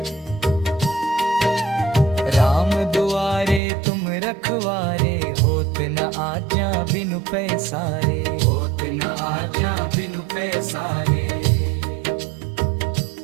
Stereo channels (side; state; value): left; drops out; at 3.6 s